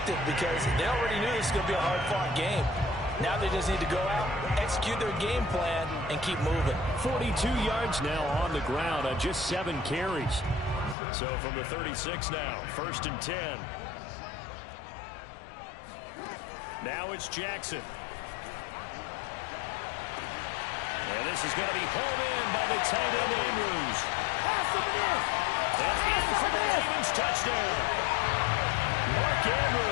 because they already knew this was going to be a hard-fought game. Now they just need to go out, execute their game plan, and keep moving. 42 yards now on the ground on just 7 carries. So from the 36 now, 1st and 10. Now it's Jackson. And this is going to be hauled in by the tight end Andrews. And in for the Ravens touchdown. Mark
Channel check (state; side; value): drops out; right; at 11.0 s